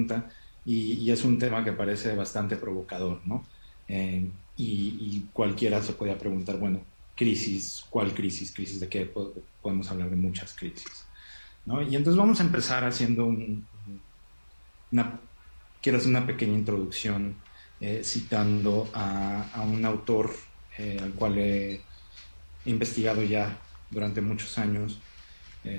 y es un tema que parece bastante provocador, ¿no? Y cualquiera se podría preguntar, bueno, crisis, ¿cuál crisis? ¿Crisis de qué? Podemos hablar de muchas crisis, ¿no? Y entonces vamos a empezar haciendo quiero hacer una pequeña introducción citando a un autor al cual he investigado ya durante muchos años,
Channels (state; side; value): inverted; both; correlation -1.00